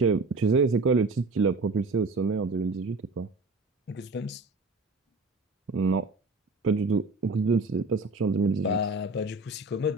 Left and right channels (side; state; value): left; quieter; 3.2 dB